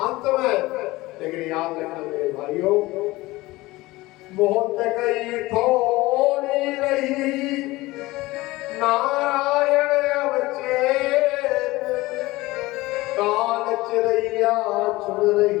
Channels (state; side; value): quieter; right; 19.7 dB